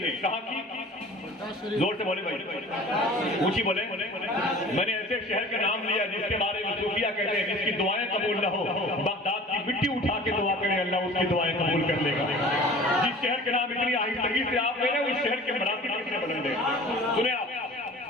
ہے، کہاں کی؟ زور سے بولے بھائی، اونچی بولے۔ میں نے ایسے شہر کا نام لیا جس کے بارے میں صوفیہ کہتے ہیں جس کی دعائیں قبول نہ ہو، بغداد کی مٹی اٹھا کے دعا کریں اللہ اس کی دعائیں قبول کر لے گا۔ جس شہر کے نام اتنی آہستگی سے آپ لے رہے ہیں، اس شہر کے مراتب کتنے بلند ہیں۔ سنیں آپ،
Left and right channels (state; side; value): normal; both; correlation 0.43